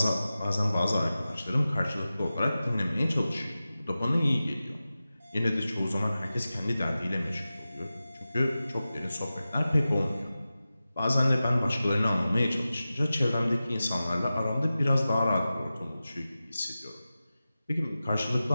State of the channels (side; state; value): both; inverted; correlation -0.95